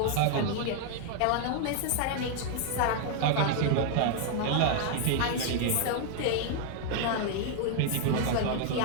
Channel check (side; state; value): both; different; correlation 0.00